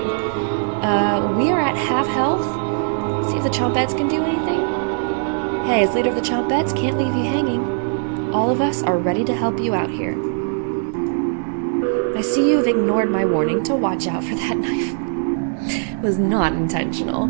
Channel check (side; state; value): left; silent; 65 dB below the other